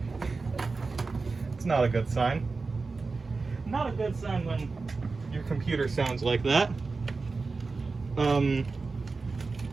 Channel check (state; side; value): quieter; left; 4.1 dB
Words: It's not a good sign. Not a good sign when your computer sounds like that.